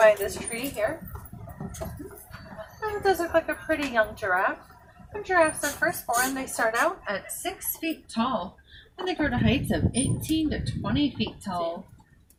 this tree here. And it does look like a pretty young giraffe. When giraffes are first born, they start out at 6 feet tall, and they grow to heights of 18 to 20 feet tall.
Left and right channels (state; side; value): identical; both; correlation 1.00